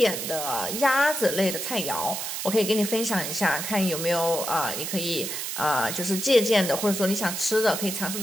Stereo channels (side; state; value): right; noise; hiss, 4 dB below the sound